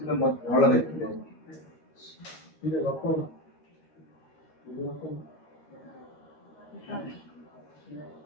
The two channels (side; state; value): right; late; 13 ms